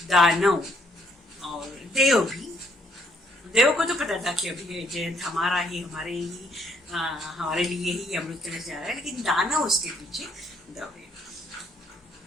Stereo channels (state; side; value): normal; both; correlation 0.69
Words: दानव और देव को तो पता था कि अभी जयंत हमारे लिए ही अमृत कलश जा रहा है, लेकिन दानव उसके पीछे दौड़े।